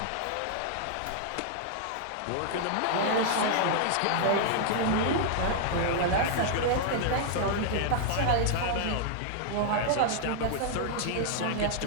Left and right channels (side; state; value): both; different; correlation -0.01